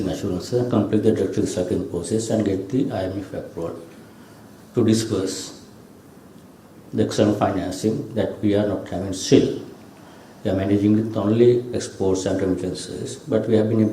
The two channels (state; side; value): identical; both; correlation 1.00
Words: assurances, complete the debt recycling process and get the IMF approval to disperse the external financing that we are not having still. We are managing with only exports and remittances, but we have been